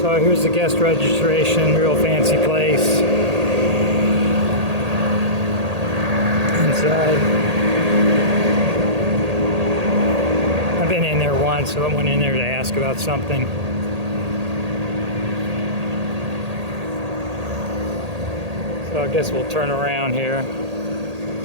So here's the guest registration, real fancy place. Inside. I've been in there once, so I went in there to ask about something. So I guess we'll turn around here.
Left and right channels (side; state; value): left; late; 1.8 ms